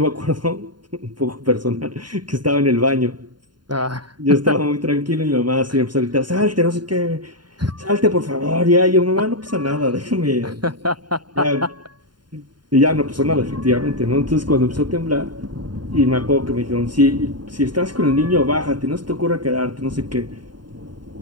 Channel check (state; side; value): late; left; 0.71 ms